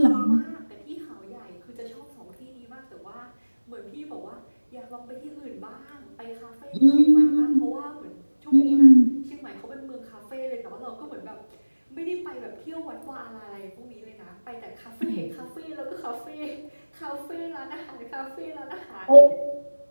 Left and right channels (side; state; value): both; inverted; correlation -1.00